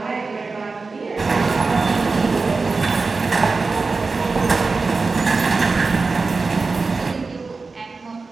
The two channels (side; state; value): left; quieter; 4.1 dB